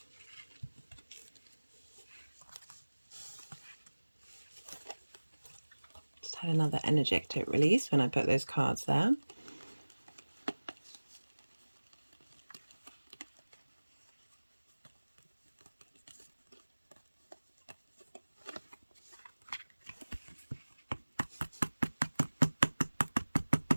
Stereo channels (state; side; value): inverted; both; correlation -1.00